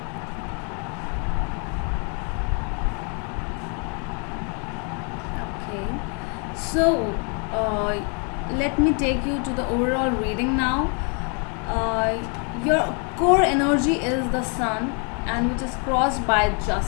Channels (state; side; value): quieter; right; 37.7 dB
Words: Okay, so let me take you to the overall reading now. Your core energy is the sun, and which is crossed by